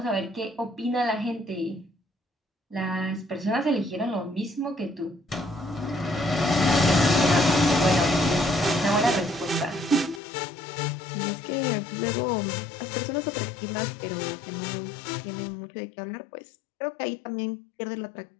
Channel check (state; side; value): drops out; right; at 10.2 s